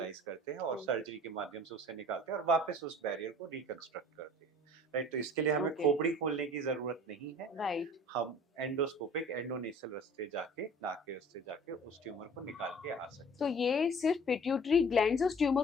करते हैं और सर्जरी के माध्यम से उसे निकालते हैं और वापस उस बैरियर को रिकंस्ट्रक्ट करते हैं। राइट, तो इसके लिए हमें खोपड़ी खोलने की जरूरत नहीं है। राइट, हम एंडोस्कोपिक एंडोनेसल रास्ते जाके, नाक के रास्ते जाके उस ट्यूमर को निकाल के आ सकते हैं। तो ये सिर्फ पिट्यूटरी ग्लैंड से उस ट्यूमर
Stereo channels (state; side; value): normal; both; correlation 0.47